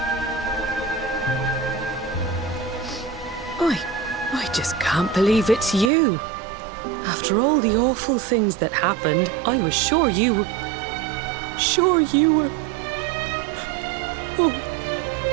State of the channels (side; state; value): left; drops out; at 5.9 s